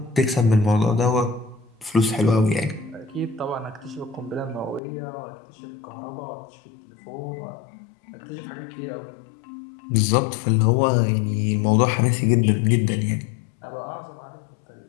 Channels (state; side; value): drops out; right; at 4.8 s